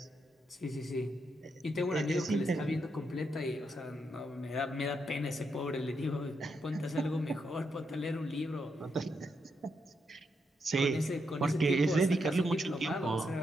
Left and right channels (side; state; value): both; normal; correlation 0.81